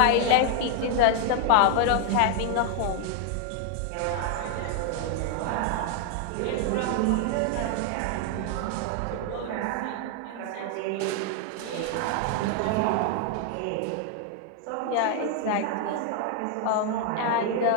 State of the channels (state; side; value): different; both; correlation 0.00